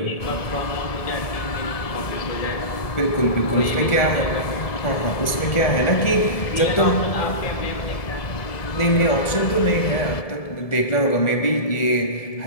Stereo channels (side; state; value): right; late; 1.7 ms